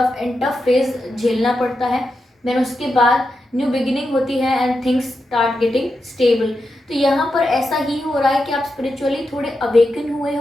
एंड टफ फेज झेलना पड़ता है, देन उसके बाद न्यू बिगिनिंग होती है and things start getting stable. तो यहाँ पर ऐसा ही हो रहा है कि आप स्पिरिचुअली थोड़े अवेकन हुए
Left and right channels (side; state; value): both; normal; correlation 0.87